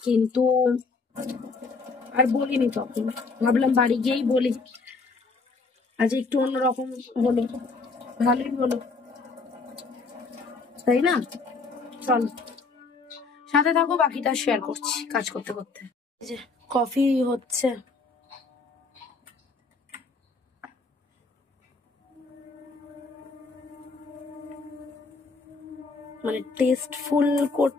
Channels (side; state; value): right; quieter; 4.1 dB